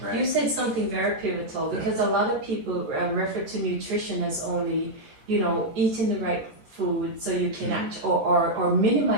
You said something very pivotal because a lot of people refer to nutrition as only, eating the right food so you can act or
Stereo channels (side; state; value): left; late; 14 ms